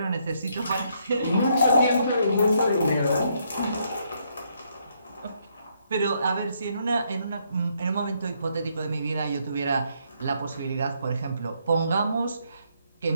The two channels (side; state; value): both; inverted; correlation -0.73